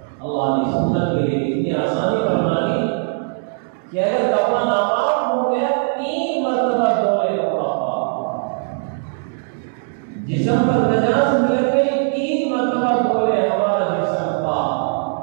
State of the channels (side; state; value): left; silent; 66 dB below the other